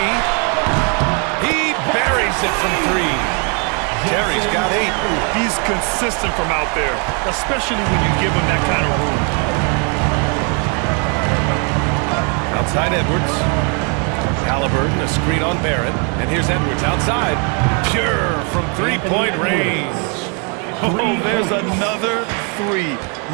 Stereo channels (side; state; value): left; quieter; 37.0 dB